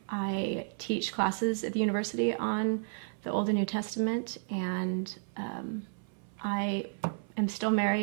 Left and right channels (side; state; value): left; silent; 56 dB below the other